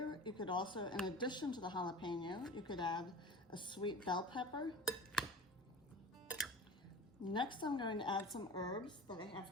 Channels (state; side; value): normal; both; correlation 0.36